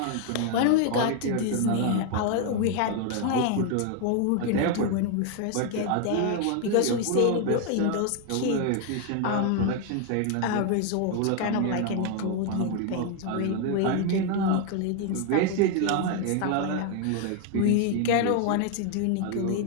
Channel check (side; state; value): both; different; correlation 0.00